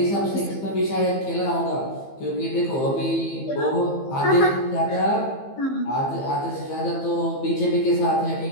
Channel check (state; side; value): late; right; 15 ms